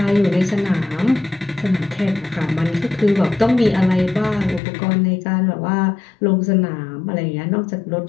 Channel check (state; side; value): drops out; right; at 4.6 s